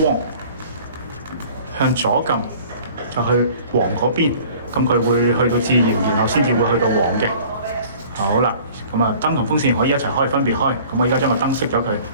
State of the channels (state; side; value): inverted; both; correlation -0.49